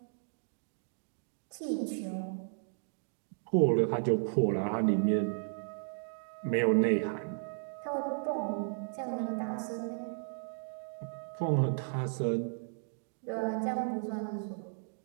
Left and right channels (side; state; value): left; silent; digital silence